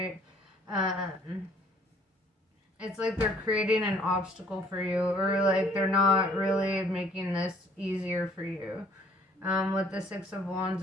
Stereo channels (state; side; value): normal; both; correlation 0.59